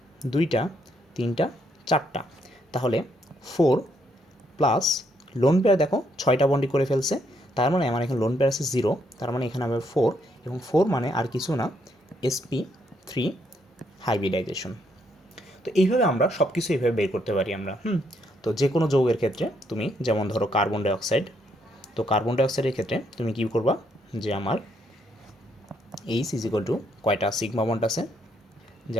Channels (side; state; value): both; normal; correlation 0.73